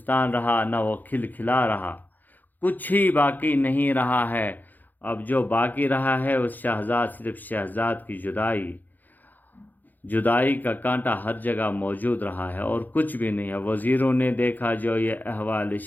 رہا، نہ وہ کھل کھلا رہا، کچھ ہی باقی نہیں رہا ہے۔ اب جو باقی رہا ہے اس صرف شہزاد کی جدائی۔ جدائی کا کانٹا ہر جگہ موجود رہا ہے اور کچھ بھی نہیں ہے۔ وزیروں نے دیکھا جو یہ احوال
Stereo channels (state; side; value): late; right; 0.085 ms